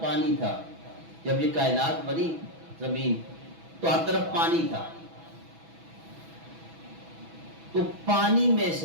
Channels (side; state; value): left; late; 6.1 ms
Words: پانی تھا، جب یہ کائنات بنی زمین تو ہر طرف پانی تھا، تو پانی میں